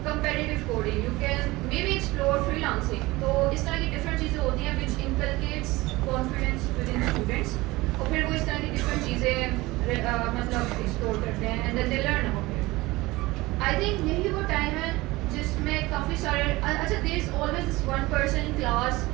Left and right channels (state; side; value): quieter; left; 20.6 dB